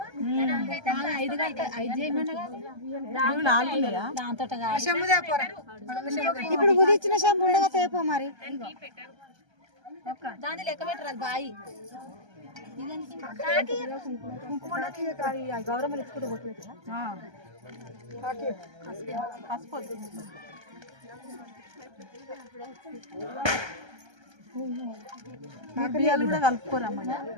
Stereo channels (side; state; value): left; late; 1.3 ms